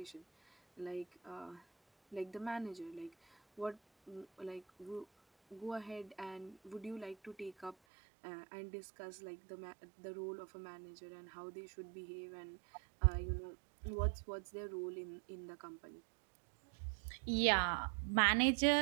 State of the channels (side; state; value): left; drops out; at 7.8 s